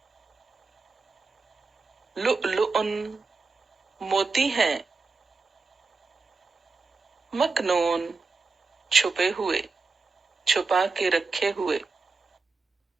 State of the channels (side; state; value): left; quieter; 4.1 dB